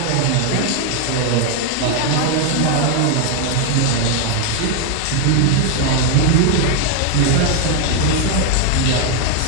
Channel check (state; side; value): different; both; correlation 0.00